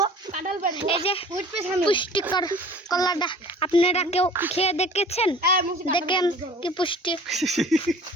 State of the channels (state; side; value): normal; both; correlation 0.46